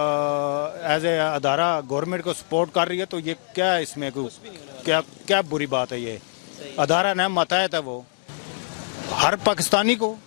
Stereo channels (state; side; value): silent; right; digital silence